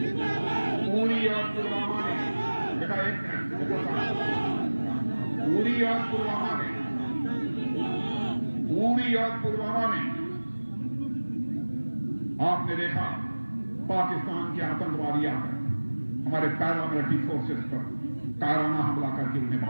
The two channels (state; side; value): inverted; both; correlation -1.00